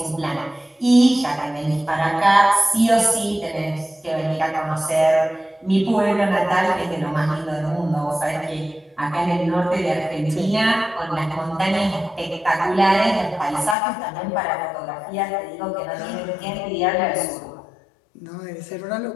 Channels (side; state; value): right; drops out; at 13.8 s